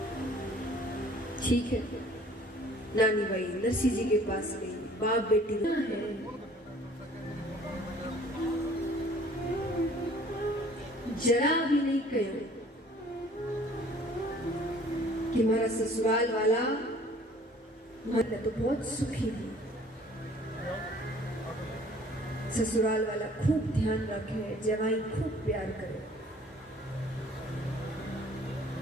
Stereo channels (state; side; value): normal; both; correlation 0.53